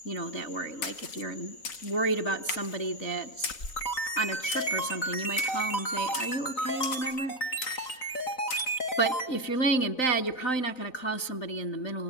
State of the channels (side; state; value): right; late; 4.0 ms